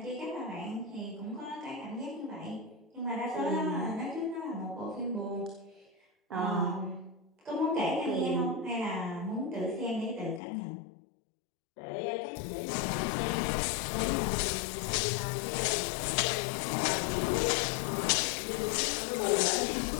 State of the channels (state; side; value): drops out; right; at 10.4 s